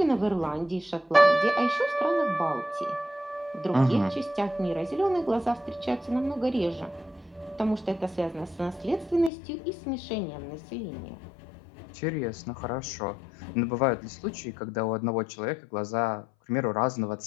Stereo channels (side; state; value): right; drops out; at 9.3 s